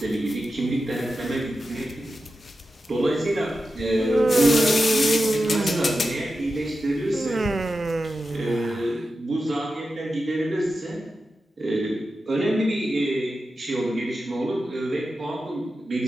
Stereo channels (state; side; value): normal; both; correlation 0.91